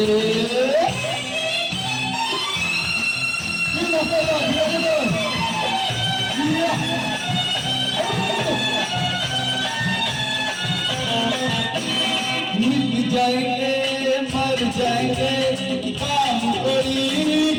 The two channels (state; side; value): identical; both; correlation 1.00